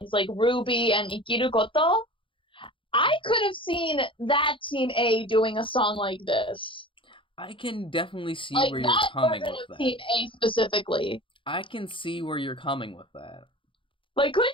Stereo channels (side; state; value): right; late; 0.25 ms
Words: like Ruby and Ikiru Koto. I could have seen that Team A doing a song like this. I can definitely see like where you're coming with that. Team A specifically. I can see where you're coming with that. Like,